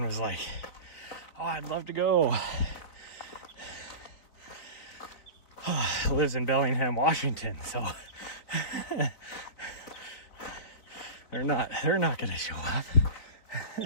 was like, oh, I'd love to go, lives in Bellingham, Washington. So they're not gonna show up.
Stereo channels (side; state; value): right; late; 4.1 ms